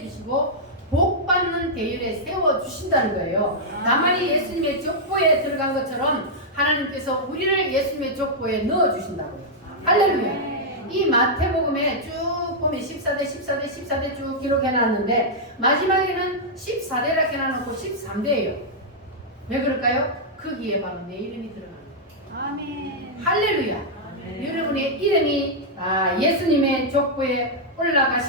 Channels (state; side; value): normal; both; correlation -0.06